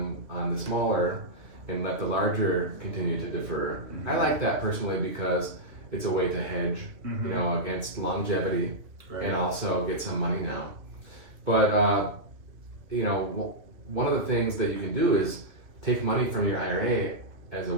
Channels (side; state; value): left; late; 2.6 ms